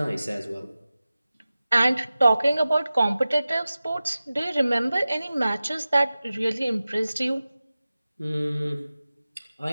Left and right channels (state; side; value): inverted; both; correlation -0.96